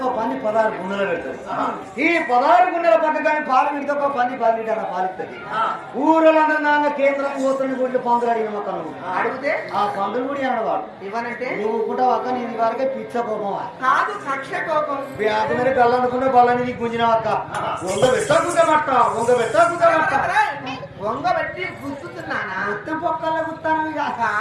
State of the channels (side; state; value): both; identical; correlation 1.00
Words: పంది 16 గుండెలు పెడతారు ఈ 16 గుండెల పక్క కానీ పాలు పెడితే ఒక పంది 10 లీటర్ల పాలిస్తుంది ఊరలందరూ కేంద్రం పోతున్న గుడ్లు పందులు అడిగిన మొక్క అడిగితే ఆ పందులు కూడా అనవాడు ఇవ్వనంటే నువ్వు కూడా అక్క నేను వరకే పిచ్చ కోపం కాదు కక్ష కోపం బ్యాగ్ మీద కళ్ళనుకున్న బళ్ళని గుంజిన అక్క వంగ పెట్టకుంటమట్ట వంగబెట్టి గుర్తున్నానా మొత్తం పక్కల గుత్తాను